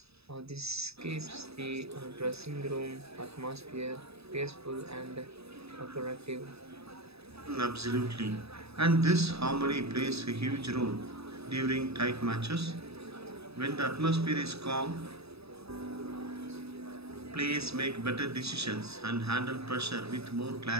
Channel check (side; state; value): left; late; 0.78 ms